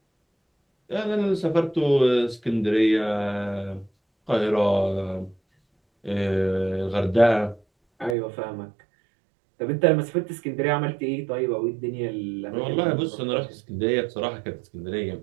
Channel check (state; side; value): drops out; left; at 8.2 s